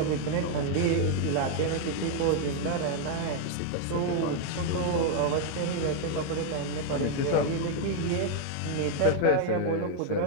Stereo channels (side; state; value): both; different; correlation 0.00